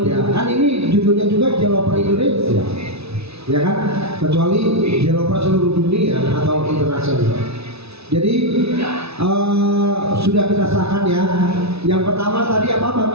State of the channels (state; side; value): late; left; 0.79 ms